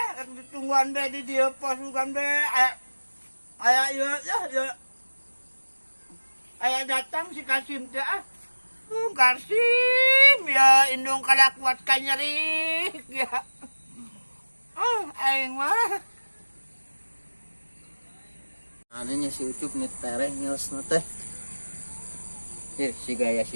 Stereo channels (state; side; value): inverted; both; correlation -1.00